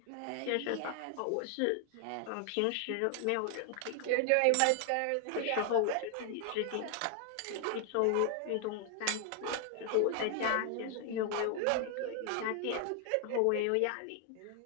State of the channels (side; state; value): both; different; correlation 0.00